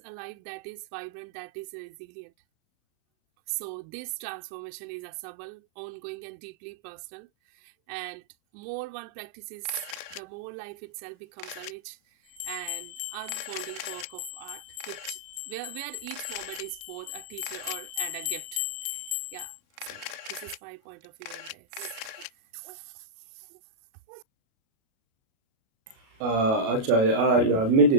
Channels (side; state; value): left; late; 37 ms